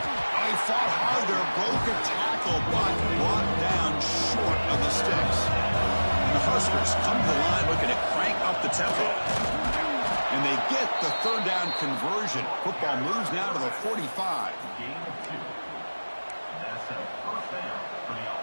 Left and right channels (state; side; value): inverted; both; correlation -1.00